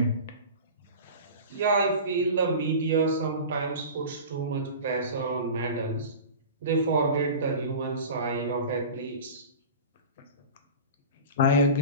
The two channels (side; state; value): both; inverted; correlation -0.34